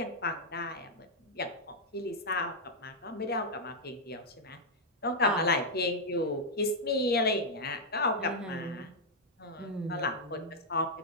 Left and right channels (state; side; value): normal; both; correlation -0.04